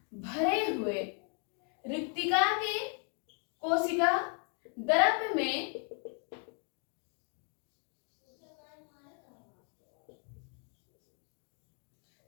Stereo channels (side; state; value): right; quieter; 39.0 dB